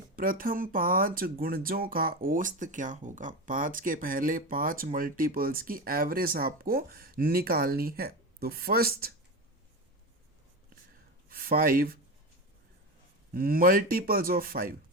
प्रथम 5 गुणजों का औसत क्या होगा। 5 के पहले 5 मल्टीपल्स की एवरेज आपको निकालनी है। तो फर्स्ट 5 मल्टीपल्स ऑफ 5,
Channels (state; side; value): normal; both; correlation 0.21